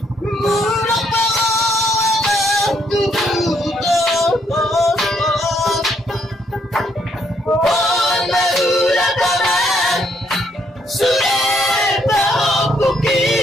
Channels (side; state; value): both; normal; correlation 0.71